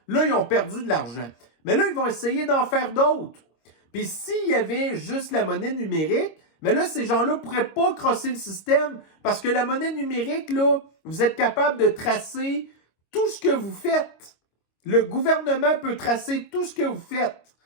là, ils ont perdu de l'argent. Mais là, ils vont essayer d'en faire d'autres. Puis s'il y avait juste la monnaie numérique, mais là, ces gens-là ne pourraient pas crosser le système parce que la monnaie numérique, là, vous êtes capable de tracer tout ce que vous faites. Le gouvernement peut tracer tout ce que vous faites.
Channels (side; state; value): right; late; 25 ms